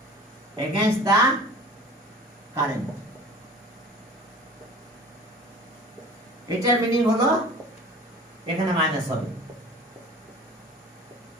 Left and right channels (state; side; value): normal; both; correlation 0.42